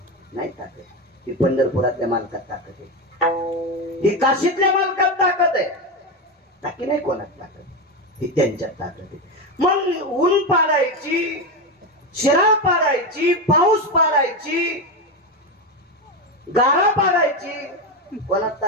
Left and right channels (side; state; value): both; normal; correlation 0.14